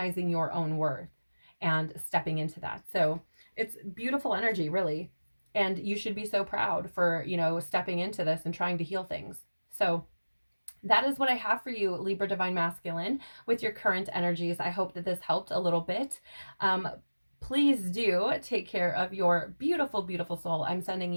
your own worth and stepping into that. So it's beautiful energy, really. And you should be so proud for, stepping into this and trying to heal things. So that is what I have for you, Libra Divine Masculine, with your current energies. I hope that this helped a little bit. Please do take care of your beautiful, beautiful soul. I'm sending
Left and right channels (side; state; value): both; inverted; correlation -1.00